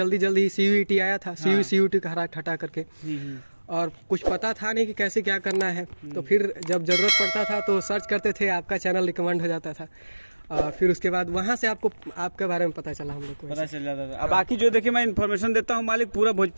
जल्दी CUET आया था, CUET का हटा करके, और कुछ पता था नहीं कि कैसे क्या करना है। तो फिर जब ज़रूरत पड़ता था तो सर्च करते थे, आपका चैनल रिकमेंड हो जाता था। फिर उसके बाद वहाँ से आपको आपके बारे में पता चला, हम लोग को पता चल जाता था। अब बाकी जो देखिए मैं इन्फॉर्मेशन देता हूँ मालिक, पूरा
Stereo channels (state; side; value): inverted; both; correlation -1.00